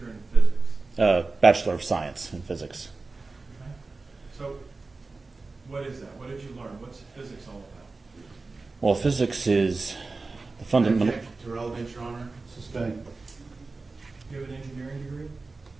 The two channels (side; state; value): left; quieter; 3.7 dB